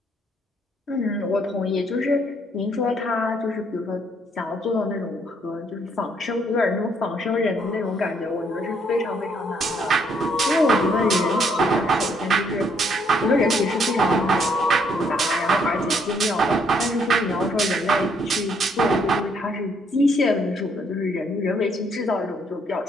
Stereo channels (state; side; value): normal; both; correlation 0.69